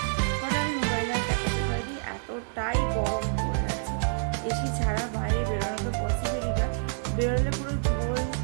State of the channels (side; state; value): left; silent; digital silence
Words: হঠাৎ আমি মোবাইলে দেখাতে পারি, এতটাই গরম পড়ে আছে, এসি ছাড়া বাইরে বেরোনো তো পসিবলই না, বেরোলে পুরো ঝোল,